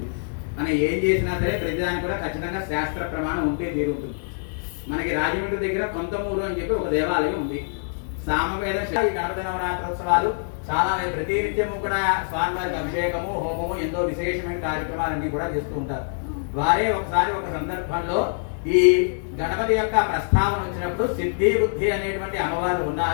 మనం ఏం చేసినా సరే ప్రతిదానికి కూడా ఖచ్చితంగా శాస్త్ర ప్రమాణం ఉంటే తీరుంటుంది. మనకి రాజమండ్రి దగ్గర కొంతమూరు అని చెప్పి ఒక దేవాలయం ఉంది. సామవేద ఈ గణపతి నవరాత్రోత్సవాలు చాలా ప్రతినిత్యము కూడా స్వామివారికి అభిషేకము, హోమము, ఎంతో విశేషమైన కార్యక్రమాలన్నీ కూడా చేస్తూ ఉంటారు. వారే ఒకసారి ఒక సందర్భంలో ఈ గణపతి యొక్క ప్రస్తావన వచ్చినప్పుడు సిద్ధి బుద్ధి అనేటువంటి అమ్మవారు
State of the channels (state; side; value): silent; right; digital silence